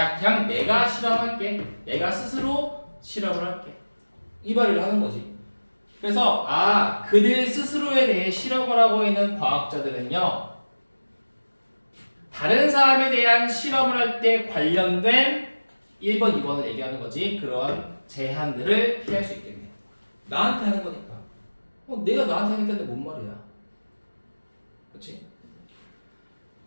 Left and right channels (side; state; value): both; inverted; correlation -1.00